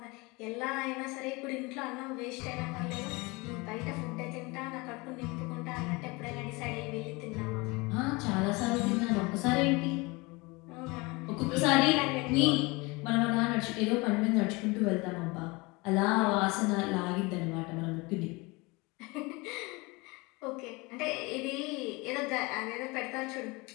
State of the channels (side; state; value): right; quieter; 25.4 dB